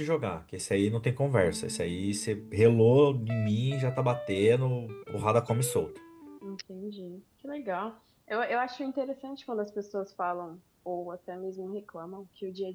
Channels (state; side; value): identical; both; correlation 1.00